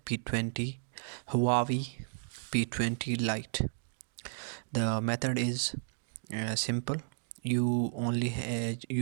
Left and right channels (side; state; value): left; silent; digital silence